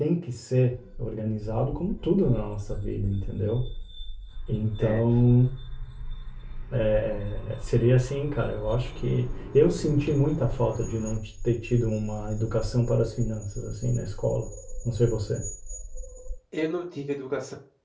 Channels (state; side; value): identical; both; correlation 1.00